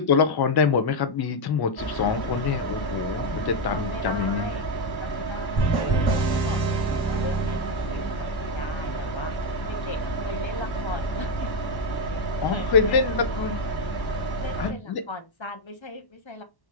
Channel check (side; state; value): right; late; 1.1 ms